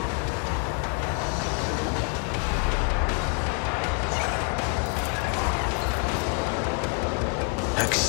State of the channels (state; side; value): quieter; right; 34.8 dB